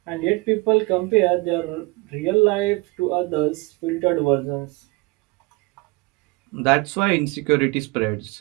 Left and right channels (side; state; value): left; quieter; 24.5 dB